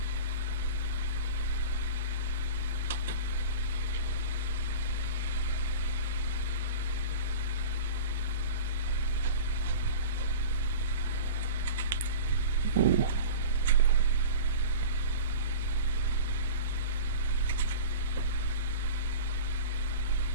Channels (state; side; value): inverted; both; correlation -0.35